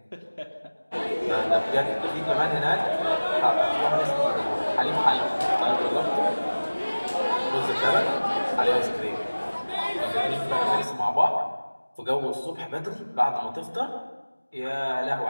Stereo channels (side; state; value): both; inverted; correlation -1.00